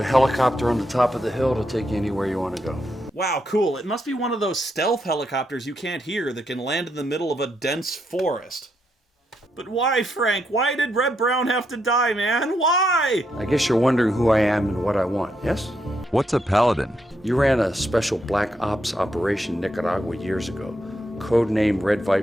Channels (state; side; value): normal; both; correlation 0.80